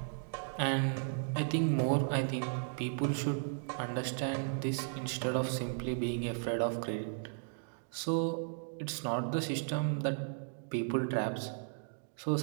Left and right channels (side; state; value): left; silent; digital silence